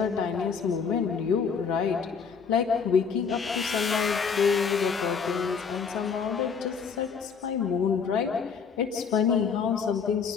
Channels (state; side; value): quieter; right; 6.1 dB